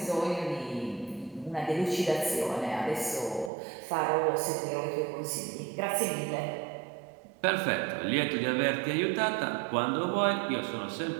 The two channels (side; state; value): left; drops out; at 3.5 s